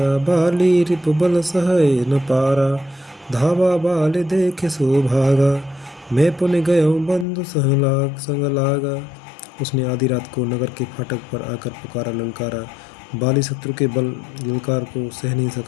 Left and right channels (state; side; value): drops out; right; at 7.2 s